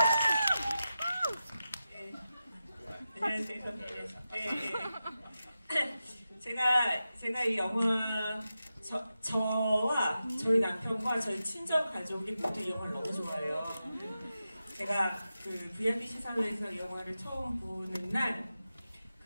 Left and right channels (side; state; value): both; inverted; correlation -0.91